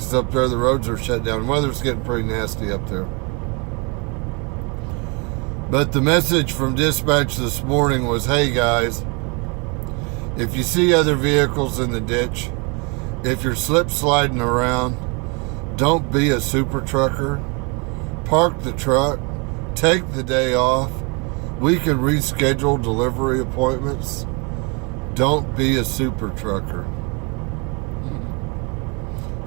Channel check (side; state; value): left; quieter; 32.0 dB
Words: up there the roads are shut down. The weather's getting pretty nasty up there. But the message from dispatch this morning was, hey guys, if you see other vehicles in the ditch, if you're slip sliding around, don't be a super trucker. Park the truck, take the day off. We can reschedule delivery appointments. Don't be a super trucker.